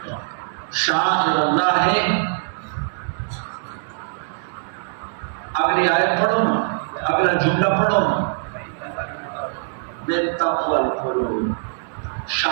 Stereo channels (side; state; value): left; silent; digital silence